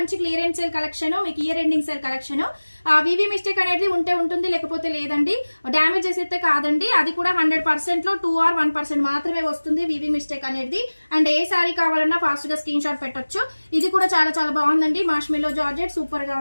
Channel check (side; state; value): both; inverted; correlation -1.00